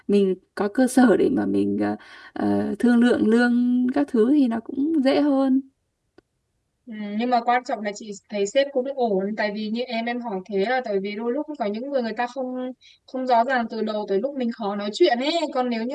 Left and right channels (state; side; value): identical; both; correlation 1.00